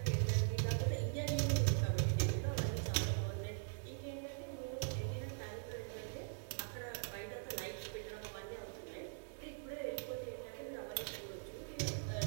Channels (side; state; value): left; silent; digital silence